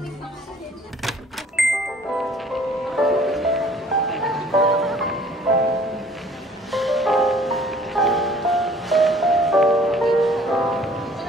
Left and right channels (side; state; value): both; normal; correlation 0.54